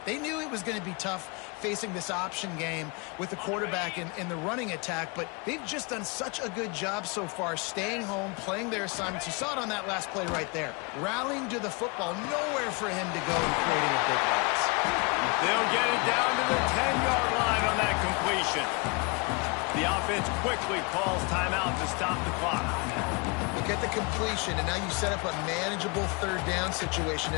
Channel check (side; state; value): right; quieter; 30.6 dB